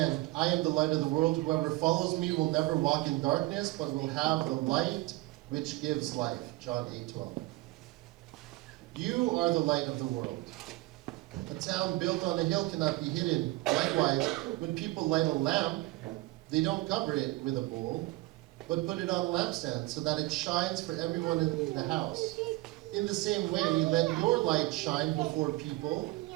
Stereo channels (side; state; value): left; quieter; 20.5 dB